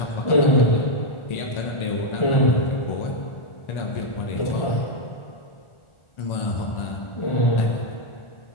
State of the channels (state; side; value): late; right; 1.4 ms